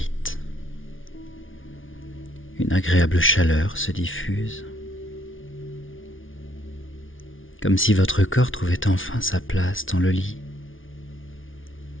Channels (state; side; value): late; right; 0.57 ms